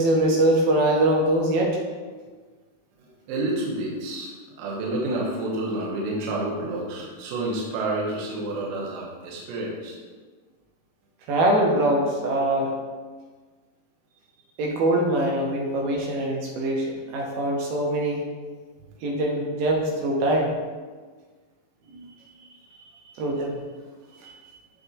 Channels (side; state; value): left; late; 18 ms